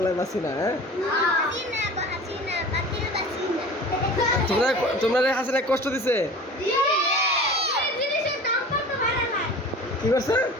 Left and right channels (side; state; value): both; normal; correlation 0.39